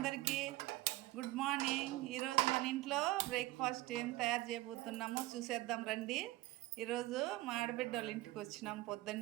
good morning. ఈరోజు మన ఇంట్లో బ్రేక్ఫాస్ట్ ఏం తయారు చేయబోతున్నామో చూసేద్దాం రండి. ఈరోజు మా ఆడబిడ్డ వాళ్ళ ఇంటికి వచ్చినాం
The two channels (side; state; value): left; quieter; 18.7 dB